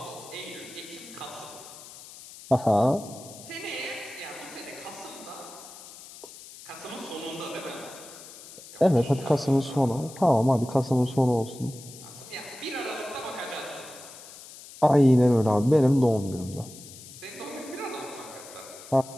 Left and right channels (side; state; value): left; noise; hiss, 17 dB below the sound